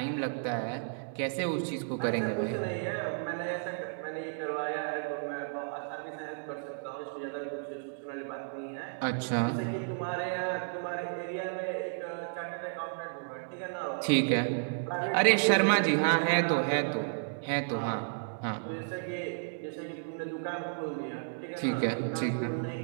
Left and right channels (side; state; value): left; silent; digital silence